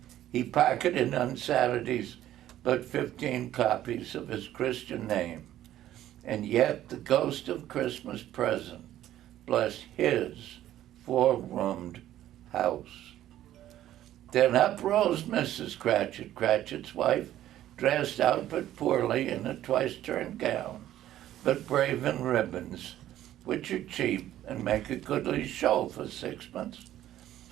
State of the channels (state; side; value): quieter; left; 12.8 dB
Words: He pocketed on Saturdays but 15 copies of his Christian name, and yet the ghost of Christmas present blessed his 4-roomed house. Then up rose Mrs. Cratchit, Cratchit's wife, dressed out but poorly in a twice-turned gown, but brave in ribbons, which are cheap and make a goodly show for sixpence.